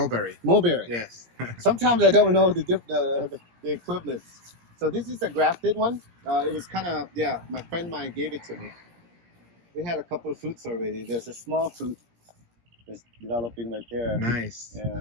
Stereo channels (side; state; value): left; late; 17 ms